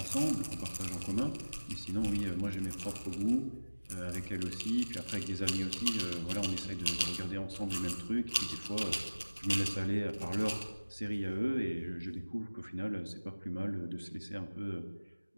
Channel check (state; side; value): inverted; both; correlation -1.00